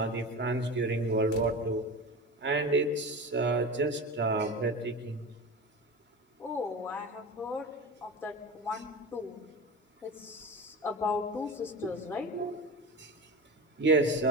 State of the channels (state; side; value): normal; both; correlation 0.28